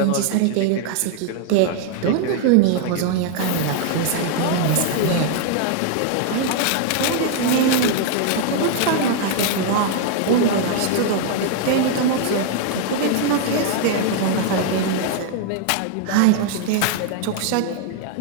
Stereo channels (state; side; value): different; both; correlation 0.00